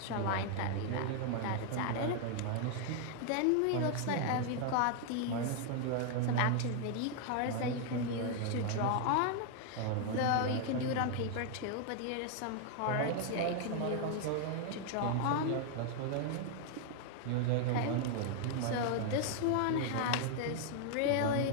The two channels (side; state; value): both; different; correlation 0.00